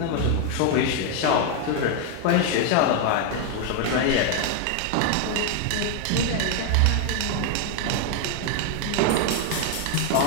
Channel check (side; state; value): both; different; correlation 0.01